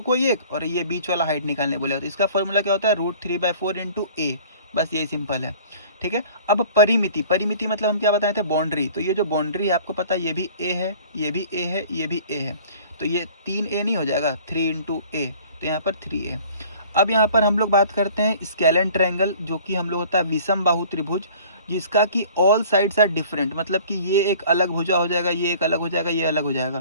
कोई एक, और ये बीच वाला हाइट निकालने बोलेगा। तो इसका फॉर्मूला क्या होता है, √3/4 इंटू ए, बस यही सिंपल है। ठीक है, अब परिमिति, परिमिति मतलब हम क्या बताए थे, बाउंड्री। तो ये जो बाउंड्री है आपको पता है, ये भी ए है, ये भी ए है, ये भी ए है, तो ये 3a नहीं हो जाएगा, 3 इंटू ए, तो यहाँ पर 3a। अब यहाँ पर हम लोग बात करते हैं स्केलन ट्रायंगल, जो कि हम लोग होता है विषम बाहु त्रिभुज, जिसका कि ऑल साइड्स आर डिफरेंट, मतलब कि ये एक अलग भुजा हो जाएगा, ये एक अलग हो जाएगा, ये अलग हो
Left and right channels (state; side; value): inverted; both; correlation -0.49